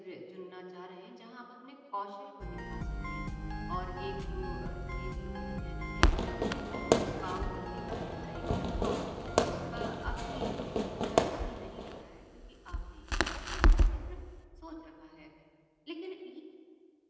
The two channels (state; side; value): identical; both; correlation 1.00